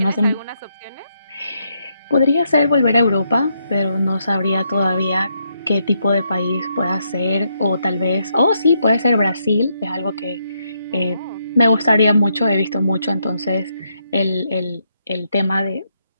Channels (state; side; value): inverted; both; correlation -0.78